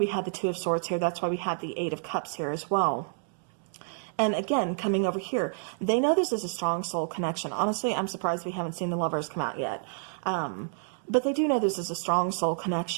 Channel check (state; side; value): silent; left; digital silence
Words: had the Two of Swords here. That's why we had the Eight of Cups here as well. And again, coming over here, they know this is a strong soul connection. Honestly, I'm surprised we haven't seen the Lovers come out yet. But they do know this is a strong soul